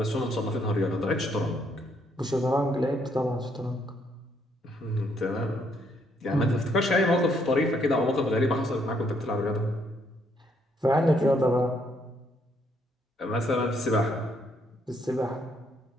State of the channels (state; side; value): normal; both; correlation 0.71